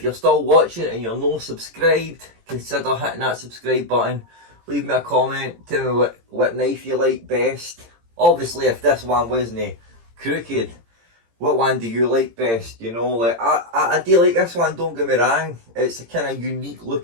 you're still watching and you're not subscribed, consider hitting that subscribe button. Leave me a comment, tell me what knife you like best. Obviously, if this one wasn't crooked, what one do you like best? You know, like I do like this one, don't get me wrong. It's a kind of unique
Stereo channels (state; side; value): late; left; 18 ms